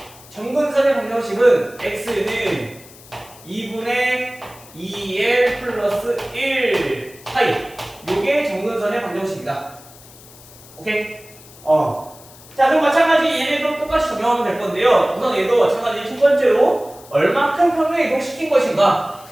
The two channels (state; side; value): noise; left; hiss, 22 dB below the sound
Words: 점근선의 방정식은 x는 2분의 2l 플러스 1 파이. 요게 점근선의 방정식이다. 오케이? 자, 그럼 마찬가지 얘네도 똑같이 적용하면 될 건데요. 우선 얘도 마찬가지 첫 번째로 얼마큼 평행 이동시킨 것인가